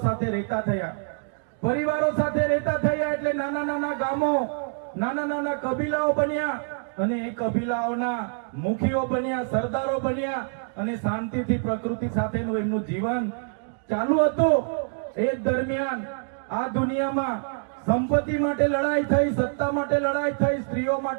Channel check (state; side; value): silent; left; 61 dB below the other